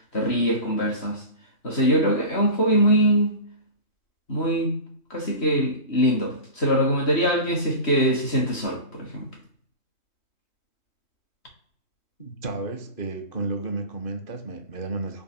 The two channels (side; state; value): right; late; 3.1 ms